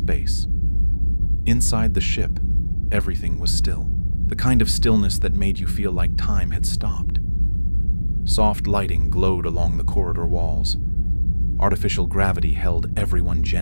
Inside the ship, everything was still. The kind of stillness that made you feel like time had stopped. Soft lighting glowed along the corridor walls. Artificial gravity held everyone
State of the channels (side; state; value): both; inverted; correlation -1.00